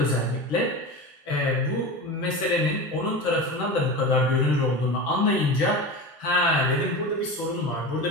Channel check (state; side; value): normal; both; correlation 0.27